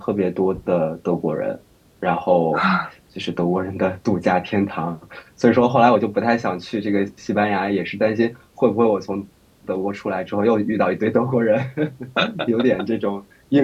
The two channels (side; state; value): both; identical; correlation 1.00